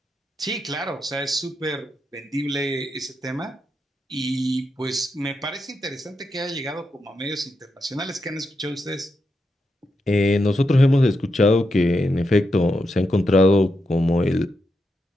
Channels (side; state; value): both; normal; correlation 0.85